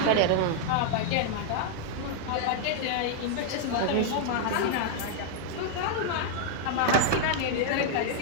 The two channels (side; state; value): both; different; correlation 0.00